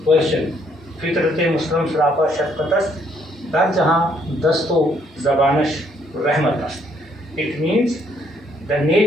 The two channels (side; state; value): both; normal; correlation 0.68